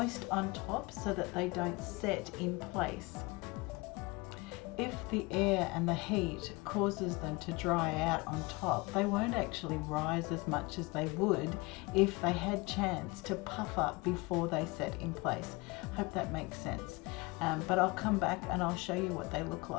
on top so that they don't set in place. If the air and the heat causes them to dry out on top, they won't actually rise as much as they would if they had chance to puff up before they set in place. Hope that makes sense. But I'll come back and I'll show you what they look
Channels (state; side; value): quieter; right; 25.2 dB